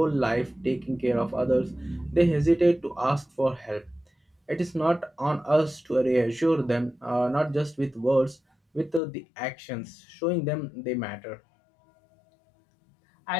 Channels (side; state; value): right; drops out; at 9.0 s